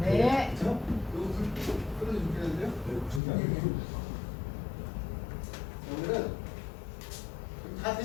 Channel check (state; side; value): drops out; right; at 3.2 s